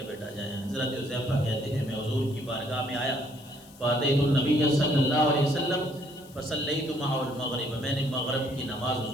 بیٹا جائیں۔ حضرت حذیفہ کہتے ہیں میں حضور کی بارگاہ میں آیا، فاتحت النبی صلی اللہ علیہ وسلم فصلیت معه المغرب، میں نے مغرب کی نماز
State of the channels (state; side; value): noise; left; hiss, 23 dB below the sound